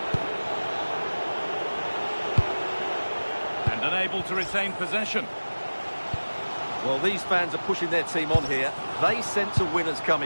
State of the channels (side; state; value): both; inverted; correlation -1.00